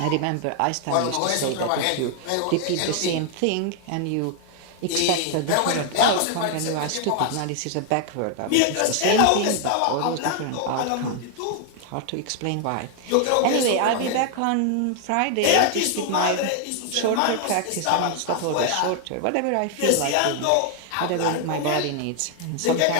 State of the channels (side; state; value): both; different; correlation 0.00